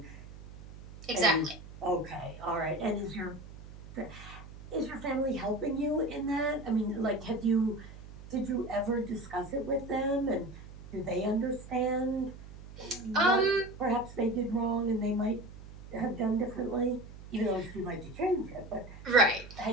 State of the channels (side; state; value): right; noise; hum, 15 dB below the sound